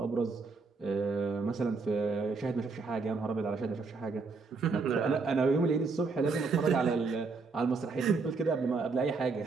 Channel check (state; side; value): quieter; left; 4.3 dB